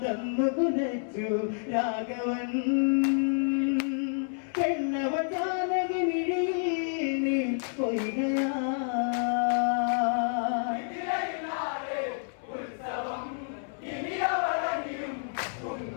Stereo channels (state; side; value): silent; right; 58 dB below the other